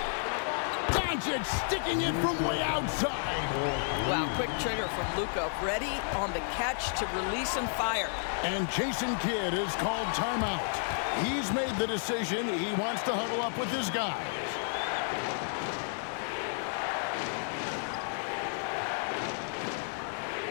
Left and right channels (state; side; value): silent; right; 57 dB below the other